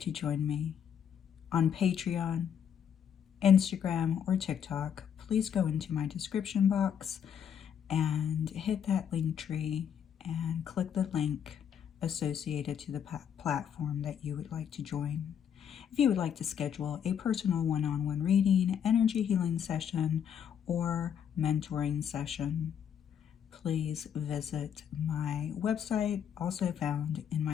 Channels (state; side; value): quieter; right; 8.4 dB